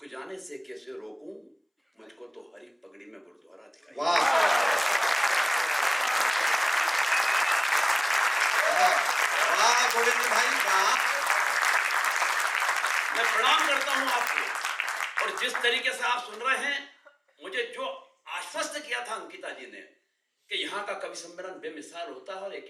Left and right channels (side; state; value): both; identical; correlation 1.00